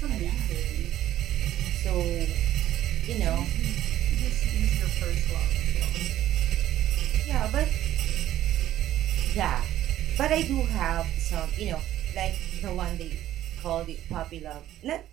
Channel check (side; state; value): left; quieter; 13.0 dB